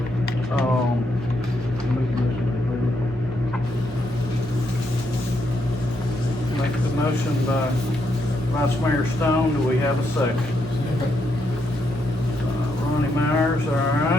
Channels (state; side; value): normal; both; correlation 0.78